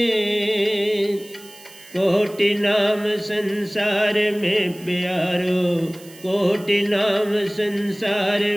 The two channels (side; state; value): right; noise; hiss, 21 dB below the sound